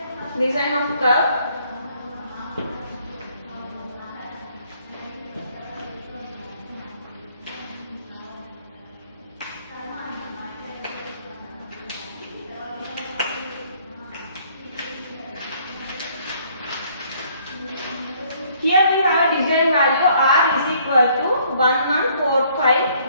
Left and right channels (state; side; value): inverted; both; correlation -0.63